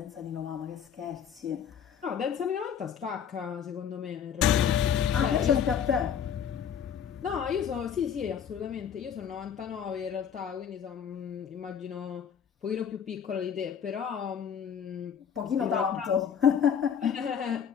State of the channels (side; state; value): right; quieter; 8.1 dB